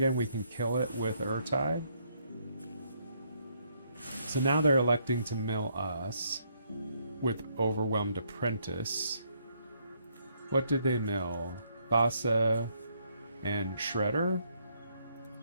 we can kill it with Urtai. So now they're electing to mill us with Overwhelmed Apprentice. What did they mill? Thassa and Shredder?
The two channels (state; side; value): inverted; both; correlation -0.71